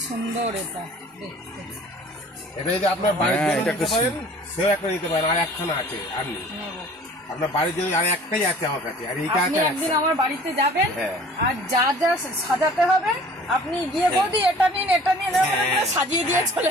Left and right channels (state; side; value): normal; both; correlation 0.49